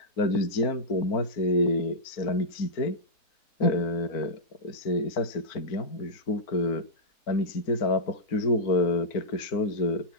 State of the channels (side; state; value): right; late; 4.4 ms